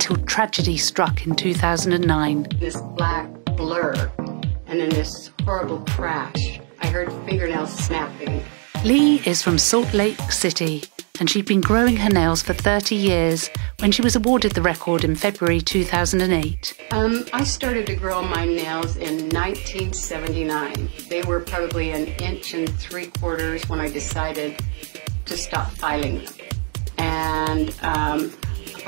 tragedy struck in 2009. This black blur, and then this horrible crash. I heard fingernails snapping. Lee is from Salt Lake City, and she'd been growing her nails for 30 years when she was awarded the record in February 2008. I started to grow my nails in 1979. They were probably 1 3/4 inches when I decided to stop filing them. And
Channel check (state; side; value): quieter; left; 34.6 dB